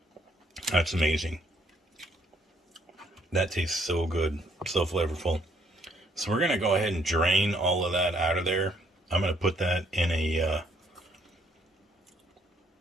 That's amazing. That tastes so good, so flavorful. So we're going to go ahead and drain all of that out of there. I'm going to put that in a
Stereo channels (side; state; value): both; normal; correlation 0.68